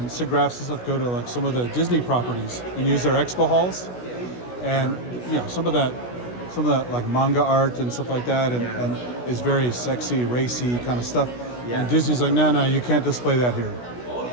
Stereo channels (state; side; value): late; right; 16 ms